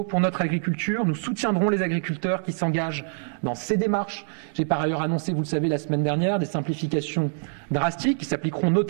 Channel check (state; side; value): silent; left; digital silence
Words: pour notre agriculture. Nous soutiendrons les agriculteurs qui s'engagent dans ces démarches. J'ai par ailleurs annoncé, vous le savez, la semaine dernière, des simplifications drastiques qui s'appliqueront